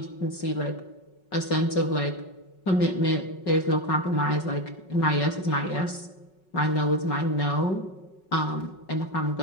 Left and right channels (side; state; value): right; late; 5.4 ms